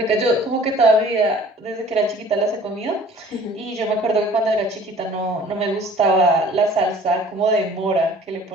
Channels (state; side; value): normal; both; correlation 0.50